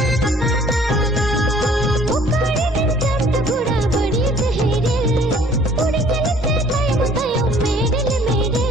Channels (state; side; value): normal; both; correlation 0.56